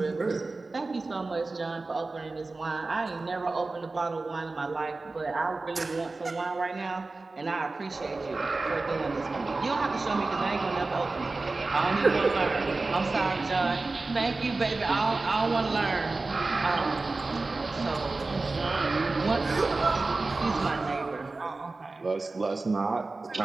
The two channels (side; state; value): left; quieter; 3.5 dB